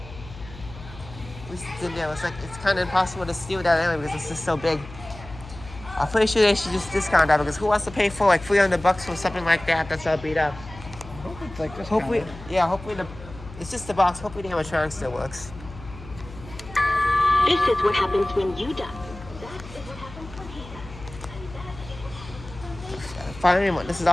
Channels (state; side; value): noise; left; hum, 15 dB below the sound